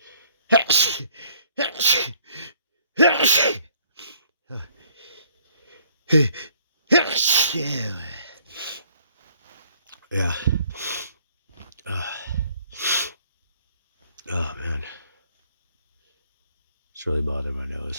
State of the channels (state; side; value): inverted; both; correlation -0.62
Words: Yeah. Oh man, it's really bothering my